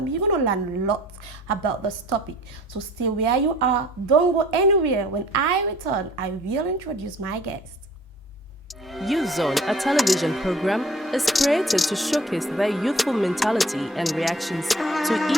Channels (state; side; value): normal; both; correlation 0.51